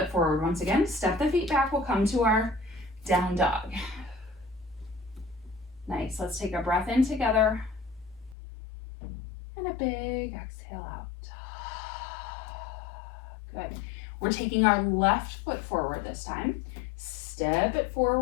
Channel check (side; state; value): right; drops out; at 8.3 s